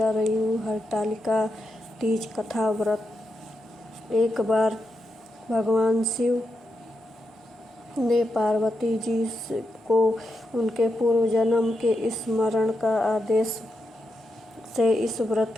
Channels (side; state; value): both; normal; correlation 0.86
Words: रही हूँ हरतालिका तीज कथा व्रत। एक बार भगवान शिव ने पार्वती जी को उनके पूर्व जन्म के स्मरण का आदेश से इस